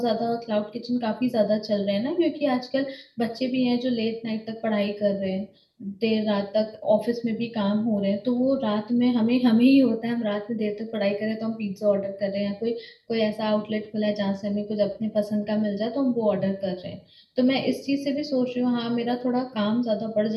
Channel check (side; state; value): both; identical; correlation 1.00